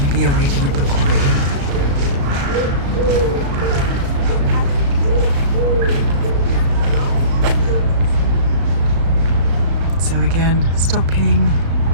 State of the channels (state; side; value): late; left; 35 ms